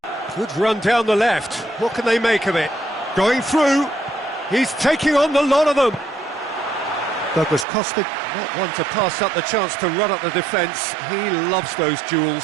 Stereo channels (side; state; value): left; drops out; at 7.7 s